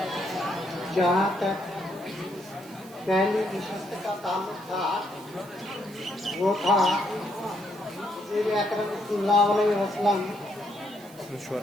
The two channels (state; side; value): noise; right; hiss, 23 dB below the sound